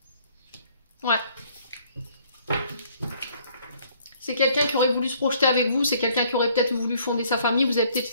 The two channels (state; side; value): inverted; both; correlation -0.61